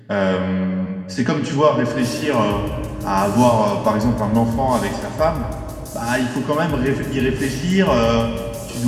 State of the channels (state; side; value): identical; both; correlation 1.00